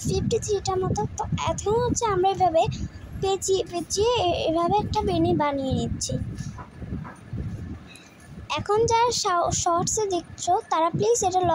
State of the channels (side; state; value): both; identical; correlation 1.00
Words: মতো। তো এখন আমরা এভাবে পেঁচিয়ে পেঁচিয়ে এভাবে একটা বেনি বানিয়ে নিচ্ছি। এখন যারা শর্টসে দেখছো তারা প্লিজ এটা